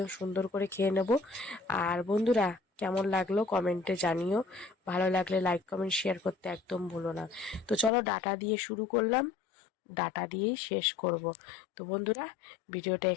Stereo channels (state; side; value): drops out; right; at 7.9 s